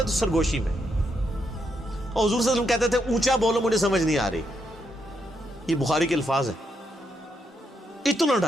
تو سرگوشی میں، اور حضور صلی اللہ علیہ وسلم کہتے تھے اونچا بولو مجھے سمجھ نہیں آ رہی. یہ بخاری کے الفاظ ہیں. اتنا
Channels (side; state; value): both; normal; correlation 0.79